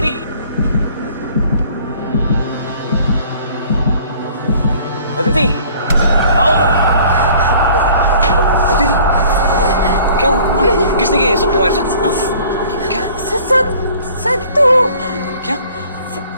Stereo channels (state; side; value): inverted; both; correlation -0.53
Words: अदिति, आओ। अदिति, क्या हुआ? किसने किया ये सब तुम्हारे साथ? हाँ? क्या? सत्तू। क्या?